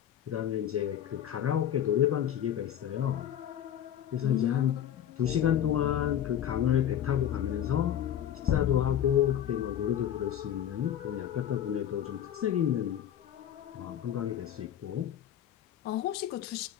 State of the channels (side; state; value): right; quieter; 10.3 dB